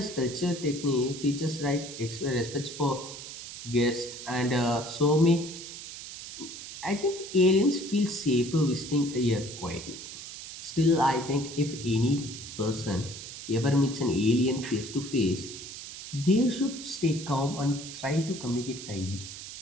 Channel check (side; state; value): right; noise; hiss, 11 dB below the sound